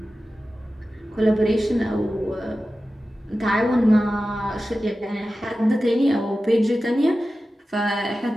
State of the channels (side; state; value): both; normal; correlation 0.94